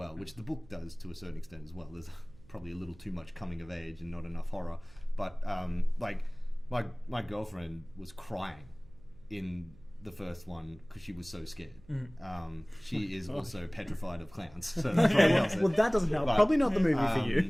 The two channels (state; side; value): noise; right; hum, 24 dB below the sound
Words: which the book does to a certain extent as well. There's probably a little too much coming of age and not enough horror. But like my girlfriend was crying in the first one because she was so scared. She is also petrified of clowns. So that probably helps it. Well, that doesn't help. But, Probably not the movie for